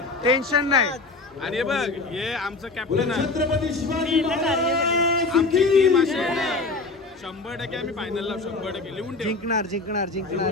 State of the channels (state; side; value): quieter; right; 3.6 dB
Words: टेन्शन नाही. आणि हे बघ, हे आमचं कॅप्टन आहे. आमची टीम अशी आहे ना, 100% आम्ही फायनलला 100% लिहून ठेवू. जिंकणार जिंकणार